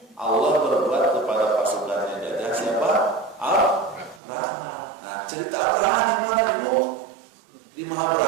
Allah berbuat kepada pasukannya gajah siapa? Abraha. Nah, cerita Abraha di mana itu? Di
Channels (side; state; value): left; drops out; at 4.2 s